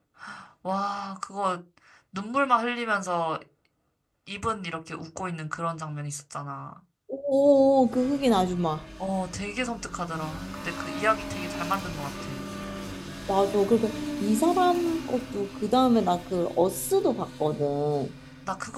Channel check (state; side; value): identical; both; correlation 1.00